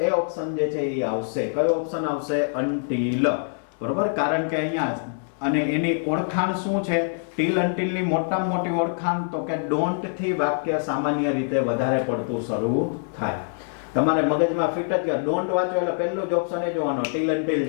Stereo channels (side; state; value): right; silent; digital silence